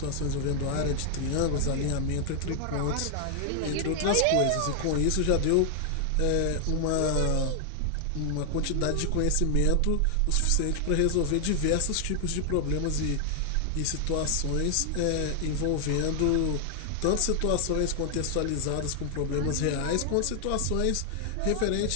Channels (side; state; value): both; different; correlation 0.00